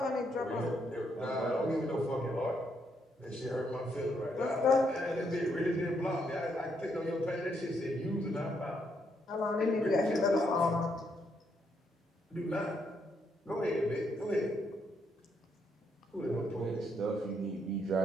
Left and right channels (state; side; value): normal; both; correlation 0.76